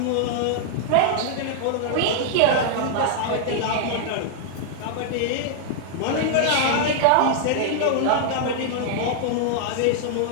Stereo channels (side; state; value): both; different; correlation -0.01